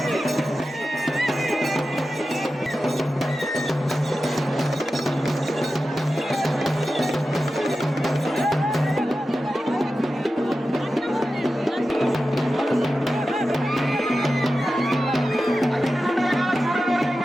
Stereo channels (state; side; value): normal; both; correlation 0.93